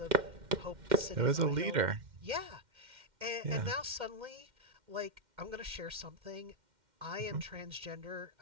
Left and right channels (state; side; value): late; left; 2.1 ms